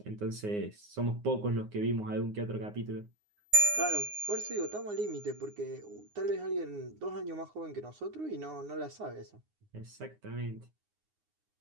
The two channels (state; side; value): late; left; 9.6 ms